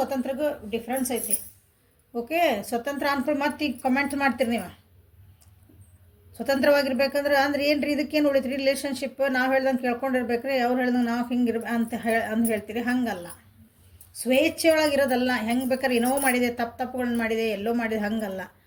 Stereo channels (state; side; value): identical; both; correlation 1.00